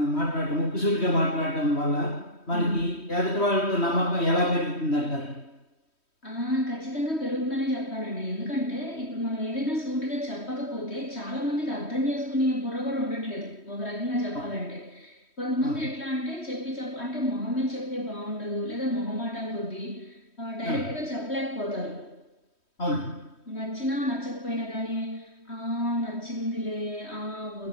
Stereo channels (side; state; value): right; late; 3.1 ms